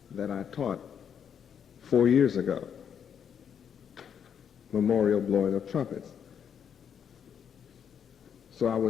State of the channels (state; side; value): quieter; right; 8.0 dB